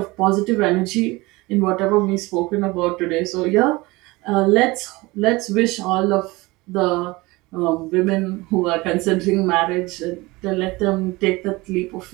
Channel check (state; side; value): quieter; left; 22.4 dB